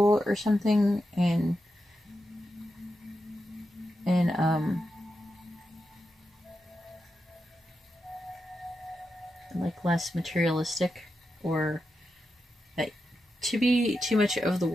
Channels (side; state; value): both; normal; correlation 0.88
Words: or something, and like less materialistic, or that to be too much of the